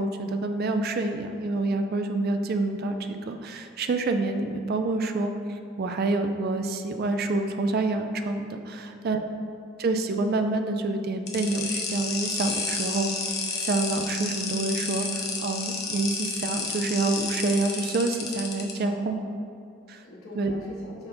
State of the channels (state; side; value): normal; both; correlation 0.49